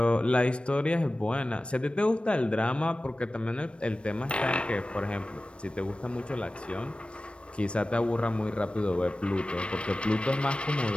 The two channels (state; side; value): late; right; 0.059 ms